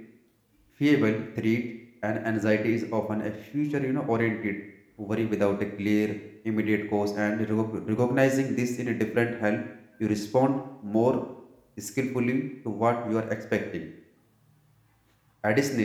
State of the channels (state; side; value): identical; both; correlation 1.00